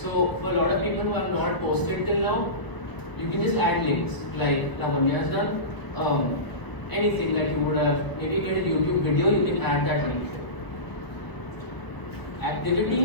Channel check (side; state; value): right; late; 1.0 ms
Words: for a lot of people who have not posted till now, you can just add links like Lavanya has done. Anything that you would have, maybe you get a YouTube video, you can add that link.